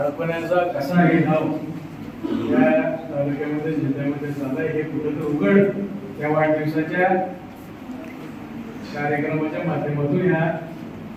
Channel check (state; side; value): identical; both; correlation 1.00